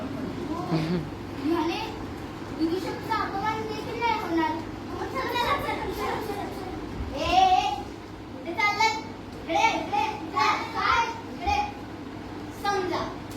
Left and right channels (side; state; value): both; identical; correlation 1.00